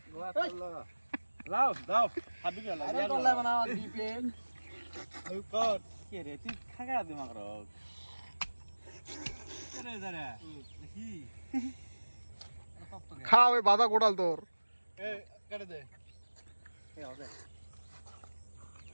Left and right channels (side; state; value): both; inverted; correlation -1.00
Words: লাও দাও হাবি গেল আরে তোলা বানাও দিপে আই কর কে রে তুই খাগা দে মাগর কেরে দাঁড়া কি খাও এই বাধা গোটাল তোর এ কেটে দে এ হবে